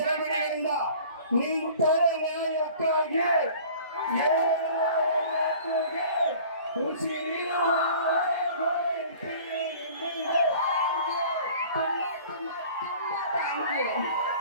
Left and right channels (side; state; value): both; inverted; correlation -0.47